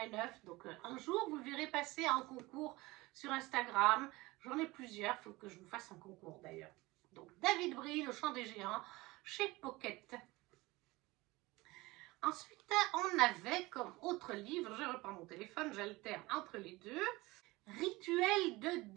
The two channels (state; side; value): quieter; left; 21.2 dB